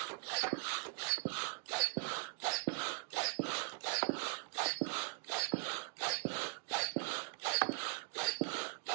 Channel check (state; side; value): silent; left; 51 dB below the other